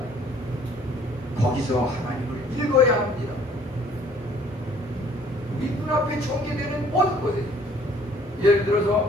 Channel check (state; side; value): normal; both; correlation 0.58